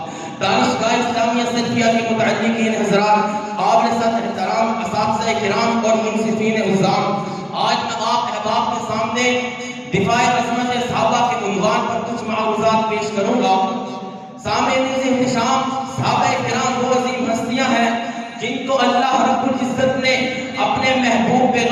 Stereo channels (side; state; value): both; identical; correlation 1.00